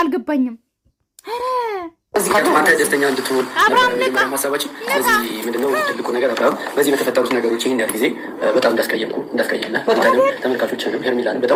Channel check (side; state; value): both; identical; correlation 1.00